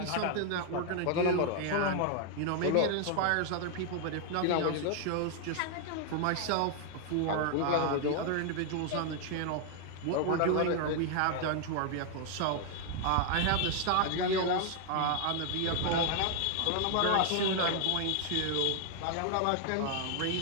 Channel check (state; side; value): different; both; correlation 0.00